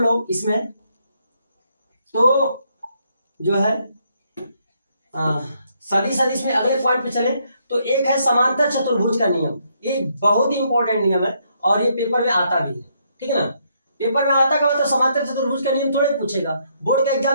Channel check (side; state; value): both; inverted; correlation -0.73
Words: लोग इसमें, तो जो है सदिश अदिश में अगले पॉइंट पे चले तो एक है समांतर चतुर्भुज का नियम। ये बहुत ही इंपॉर्टेंट नियम है और ये पेपर में आता भी है, ठीक है ना। पेपर में आता का मतलब समांतर चतुर्भुज का नियम थोड़े पूछेगा, बोर्ड का